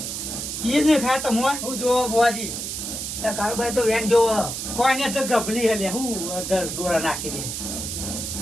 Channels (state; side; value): noise; right; hiss, 5 dB below the sound